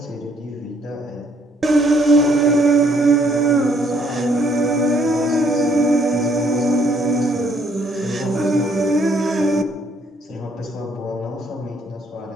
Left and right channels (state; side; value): normal; both; correlation 0.67